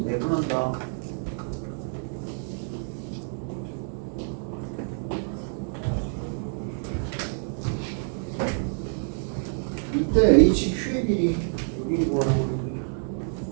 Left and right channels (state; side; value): silent; left; 60 dB below the other